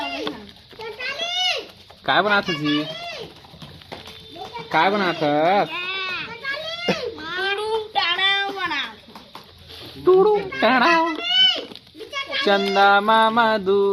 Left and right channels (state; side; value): identical; both; correlation 1.00